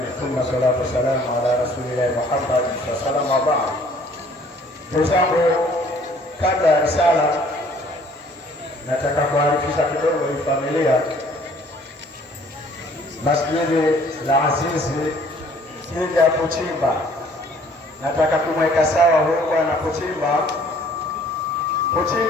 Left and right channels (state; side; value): normal; both; correlation 0.57